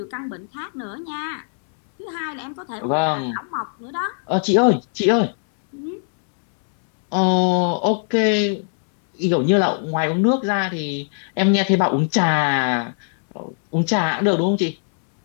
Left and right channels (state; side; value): silent; right; 65 dB below the other